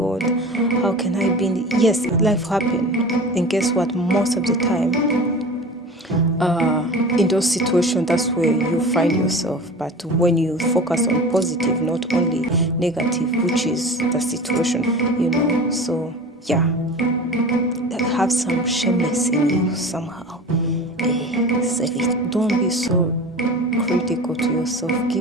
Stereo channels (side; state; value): both; normal; correlation 0.35